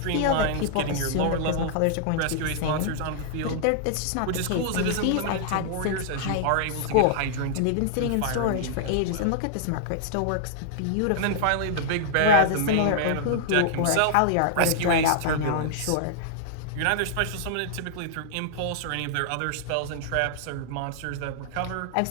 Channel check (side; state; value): both; different; correlation -0.01